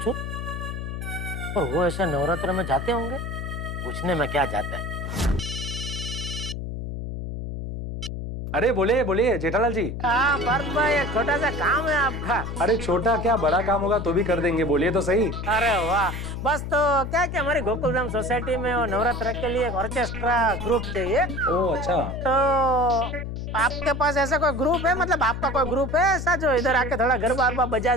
और वो ऐसे नवरात्र में जाते होंगे, पूछने में क्या जाता है। अरे बोलिए जेठालाल जी। हाँ पार्थ भाई, एक छोटा सा काम है आपका। अरे छोटा क्या बड़ा काम होगा तो भी कर देंगे, बोलिए तो सही। अरे वाह, बस तो क्या कि हमारी गोकुलधाम सोसाइटी में वो नवरात्र के लिए एक ऑर्केस्ट्रा ग्रुप चाहिए। ओह अच्छा। तो आपके पास ऐसा कोई ग्रुप है, मतलब आपका कोई ग्रुप है ऐसा जो इधर आके थोड़ा गरबा बजा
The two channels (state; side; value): noise; left; hum, 6 dB below the sound